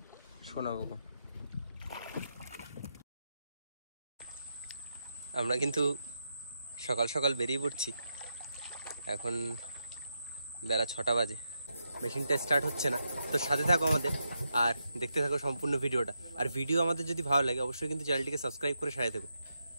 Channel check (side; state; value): both; inverted; correlation -0.84